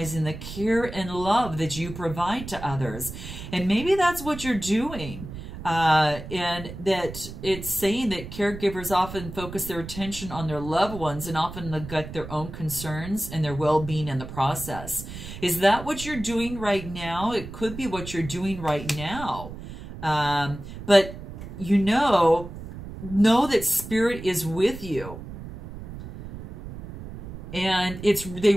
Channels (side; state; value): right; noise; rumble, 11 dB below the sound